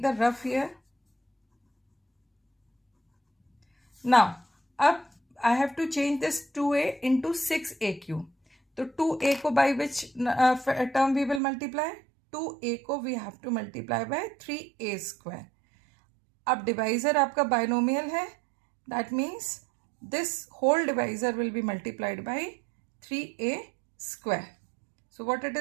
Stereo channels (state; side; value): drops out; left; at 11.4 s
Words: the rough here. Now अब I have to change this 2a into 6a cube. तो 2a को by which term we will multiply? 2a को we have to multiply by 3a square. अब divisor आपका binomial है, that means this whole divisor will be multiplied by 3a square. So what it